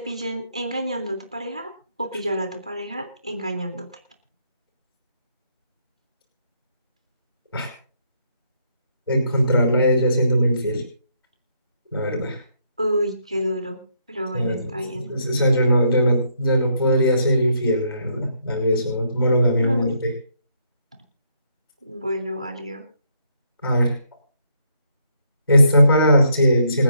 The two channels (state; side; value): inverted; both; correlation -0.73